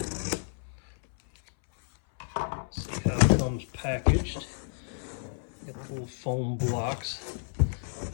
Packaged. Got the little foam blocks.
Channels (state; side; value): silent; right; 58 dB below the other